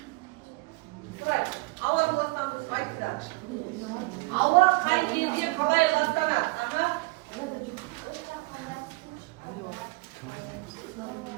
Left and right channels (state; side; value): quieter; left; 25.7 dB